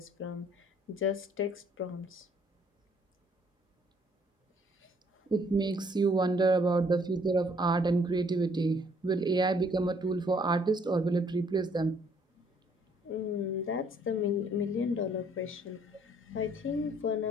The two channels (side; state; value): both; normal; correlation 0.64